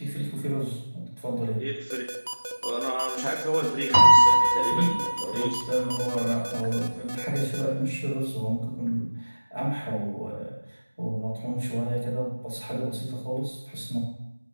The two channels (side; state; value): both; inverted; correlation -1.00